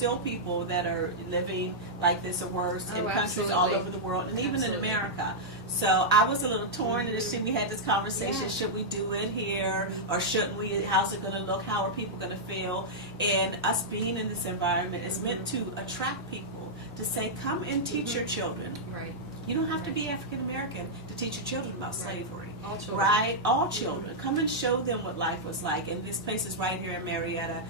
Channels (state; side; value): normal; both; correlation -0.08